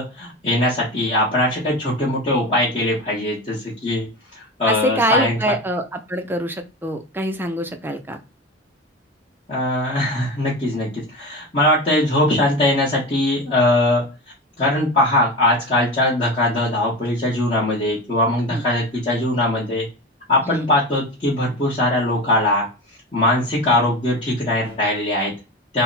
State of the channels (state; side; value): normal; both; correlation 0.26